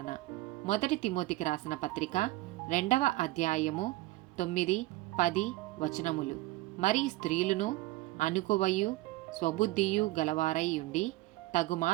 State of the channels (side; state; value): left; quieter; 18.8 dB